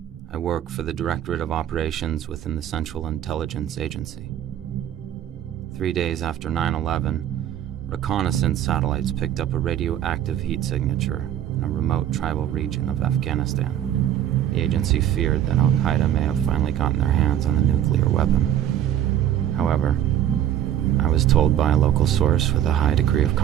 I work for the Directorate of Operations within the Central Intelligence Agency. 3 days after 9/11, reconnaissance satellites picked up a radioactive heat signature in a remote tribal region of Afghanistan. The agency feared that Al-Qaeda may have finally gotten their hands on a nuclear weapon. However, I was told by a local source with a high degree of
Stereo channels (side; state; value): left; quieter; 11.1 dB